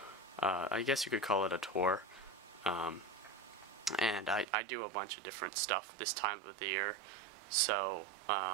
I guess you could call it a tour. And I do a bunch of different stuff this time of the year, so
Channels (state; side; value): drops out; left; at 4.5 s